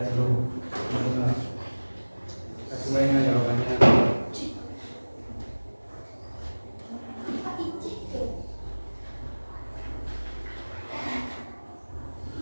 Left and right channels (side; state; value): both; inverted; correlation -1.00